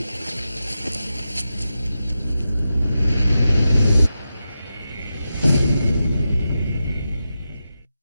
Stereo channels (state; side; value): inverted; both; correlation -0.89